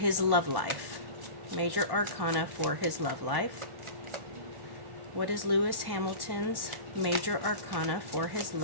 love life? Major arcana for his love life. What is Lewis Hamilton's major arcana for his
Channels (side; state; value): left; late; 1.1 ms